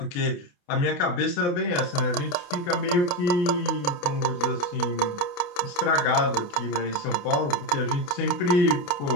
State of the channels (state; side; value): late; right; 28 ms